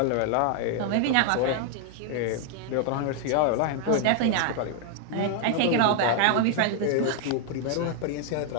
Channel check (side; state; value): both; different; correlation 0.00